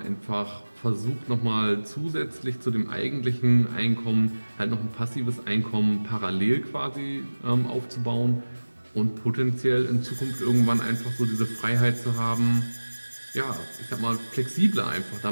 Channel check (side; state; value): both; inverted; correlation -1.00